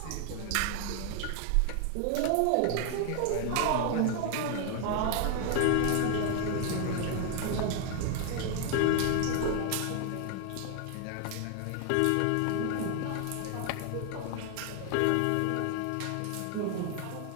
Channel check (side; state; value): both; different; correlation 0.00